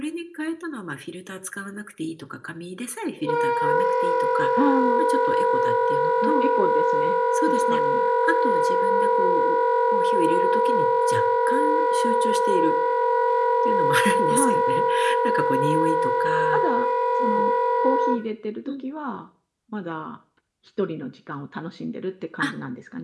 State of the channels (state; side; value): identical; both; correlation 1.00